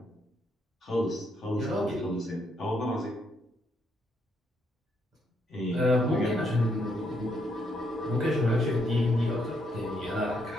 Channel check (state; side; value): normal; both; correlation 0.75